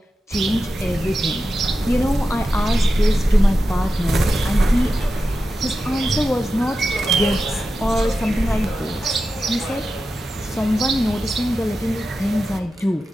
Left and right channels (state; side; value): normal; both; correlation 0.91